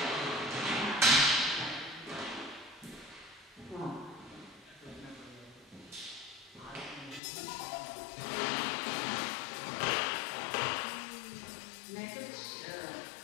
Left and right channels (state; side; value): drops out; right; at 7.2 s